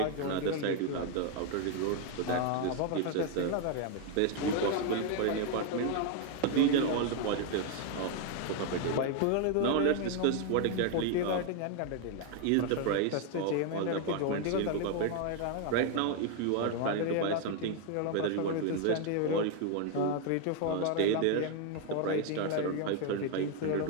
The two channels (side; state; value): both; different; correlation 0.01